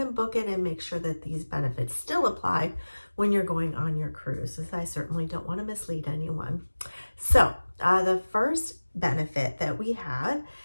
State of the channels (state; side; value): inverted; both; correlation -1.00